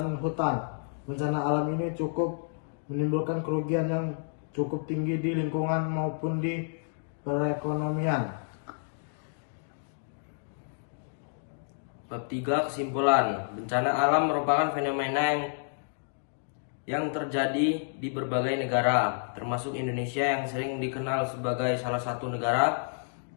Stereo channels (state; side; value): silent; right; digital silence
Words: hutan. Bencana alam ini cukup menimbulkan kerugian yang cukup tinggi di lingkungan maupun di perekonomian. Bab 3. Kesimpulan. Bencana alam merupakan fenomena yang terjadi di berbagai negara, termasuk Indonesia yang sering dikenal sebagai salah satu negara